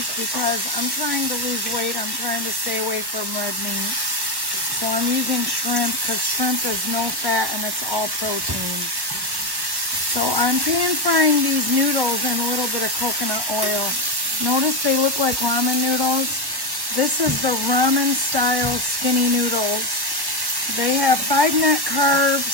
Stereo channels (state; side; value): late; left; 1.1 ms